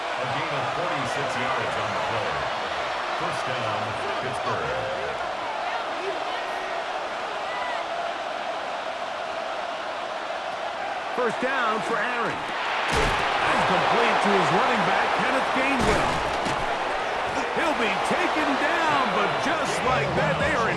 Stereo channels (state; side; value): identical; both; correlation 1.00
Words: A gain of 46 yards on the play. 1st down, Pittsburgh. First down for Aaron. And complete to his running back, Kenneth Gainwell. He'll be taken down, but just like that, they are